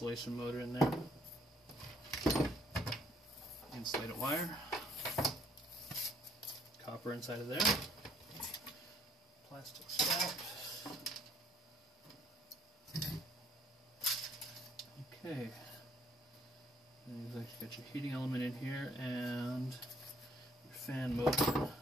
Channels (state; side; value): normal; both; correlation 0.64